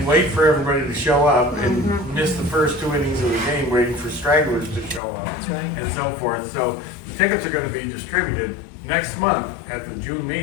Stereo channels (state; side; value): drops out; right; at 5.0 s